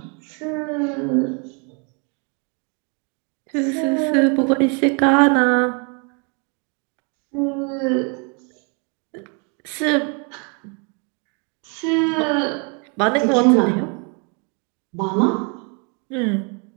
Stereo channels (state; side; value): quieter; left; 35.8 dB